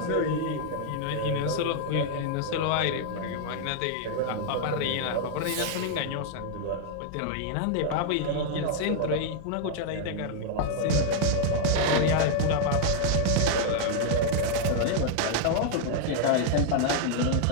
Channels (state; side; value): different; both; correlation 0.00